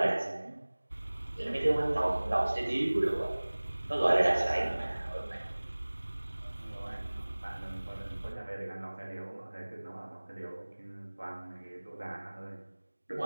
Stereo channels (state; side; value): inverted; both; correlation -1.00